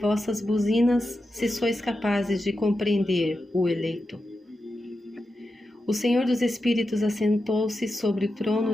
buzinas, se sois capazes de compreender o eleito. O Senhor dos Espíritos assentou-se sobre o trono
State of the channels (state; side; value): normal; both; correlation 0.90